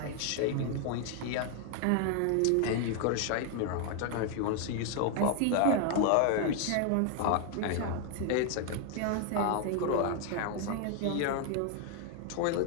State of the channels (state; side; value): different; both; correlation 0.00